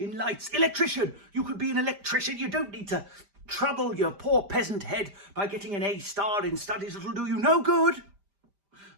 lights. Electrician. You could be an electrician. You don't need to trouble your poor peasant head by getting an A star in studies that'll do you no good.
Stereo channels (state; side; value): late; left; 5.0 ms